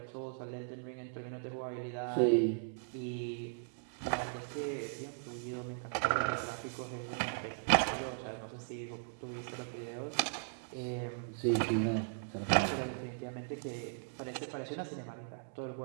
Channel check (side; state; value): left; silent; digital silence